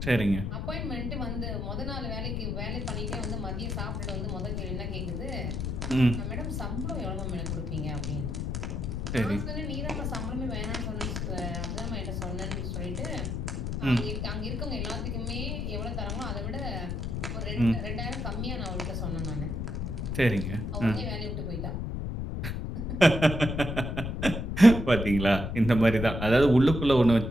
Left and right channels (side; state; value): left; noise; rumble, 2 dB below the sound